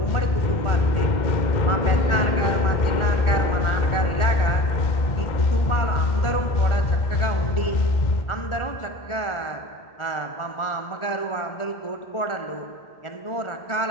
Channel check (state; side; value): late; right; 1.4 ms